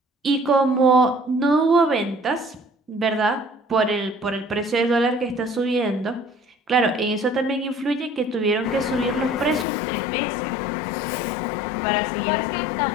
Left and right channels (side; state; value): right; drops out; at 9.7 s